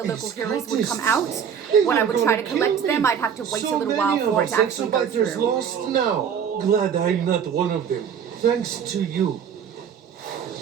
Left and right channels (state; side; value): quieter; left; 7.8 dB